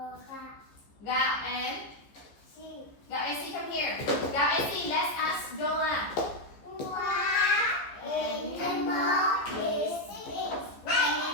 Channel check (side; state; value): right; late; 14 ms